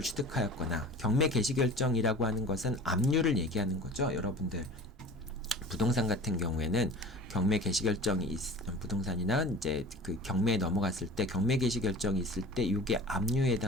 취득하였거나 경매 개시 결정이라고 하는 것은 압류를 얘기하는 거죠. 여러분들 부동산 같은 경우에는 경매 개시 결정이 부동산이나 이제 그 경매에 넘어갔을 때 경매 개시 결정이 있을 때 이게 압류에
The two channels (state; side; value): normal; both; correlation 0.39